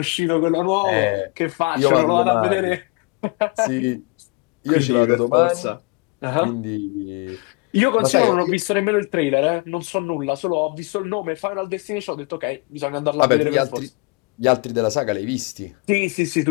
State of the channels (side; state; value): right; quieter; 29.0 dB